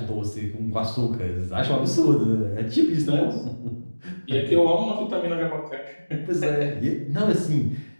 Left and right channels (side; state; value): both; inverted; correlation -1.00